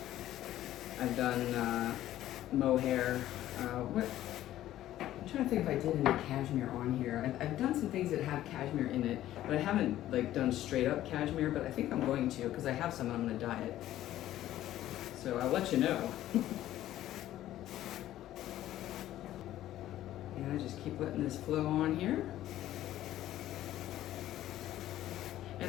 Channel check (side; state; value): right; quieter; 13.5 dB